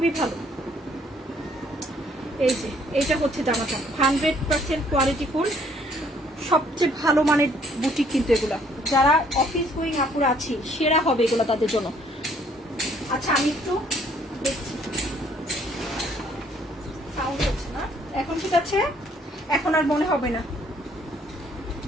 ভালো। এই যে এইটা হচ্ছে জামাটা 100% কোয়ালিটি ফুল, সবচেয়ে ভালো মানের বুটিক কিন্তু এগুলা, যারা অফিস গোয়িং আপুরা আছি সেরা হবে এগুলো তাদের জন্য। আচ্ছা আমি একটু দেখছি, সাউন্ড হচ্ছে না এখন, ঠিক আছে এখন আর মনে হবে না।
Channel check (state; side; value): normal; both; correlation 0.63